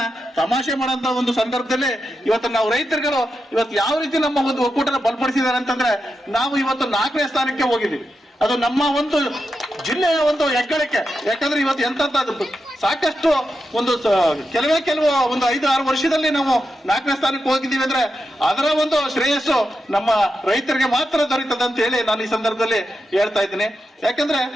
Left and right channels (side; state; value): both; normal; correlation 0.88